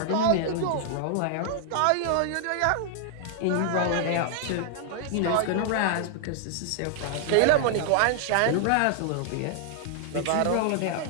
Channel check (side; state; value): both; different; correlation -0.01